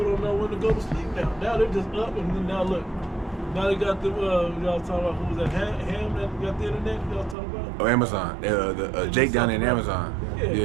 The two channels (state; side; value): drops out; left; at 7.4 s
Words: don't know when to go to sleep now. Now they're just up and then now look. Now they got the, y'all talking about who was that, Ham that got the internet, y'all talking about? Oh, Amazon. Jake down in Amazon.